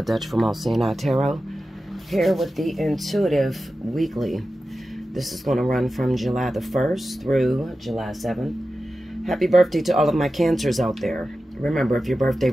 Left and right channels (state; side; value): normal; both; correlation 0.93